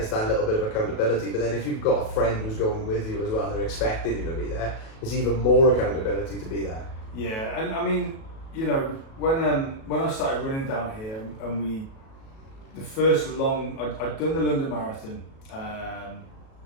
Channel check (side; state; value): right; late; 37 ms